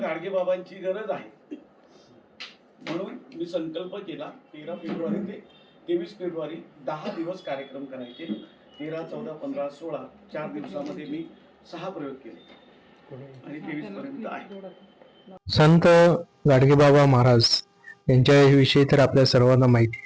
गरज आहे म्हणून मी संकल्प केला 13 फेब्रुवारी ते 23 फेब्रुवारी 10 दिवस कार्यक्रम करायचे. 13, 14, 15, 16 4 दिवसामध्ये मी 6 प्रयोग केले आणि 23 पर्यंत आहे. संत गाडगेबाबा महाराज यांच्याविषयी तर आपल्या सर्वांना माहिती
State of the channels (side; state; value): both; identical; correlation 1.00